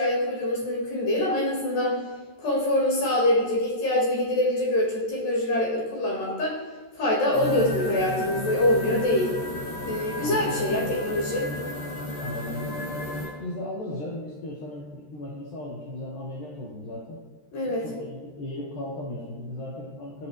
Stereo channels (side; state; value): right; late; 13 ms